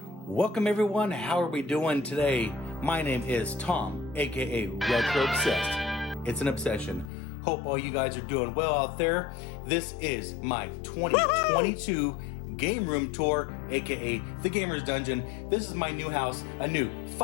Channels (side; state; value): right; drops out; at 7.1 s